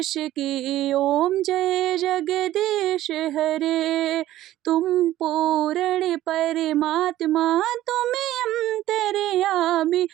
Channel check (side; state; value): left; quieter; 14.2 dB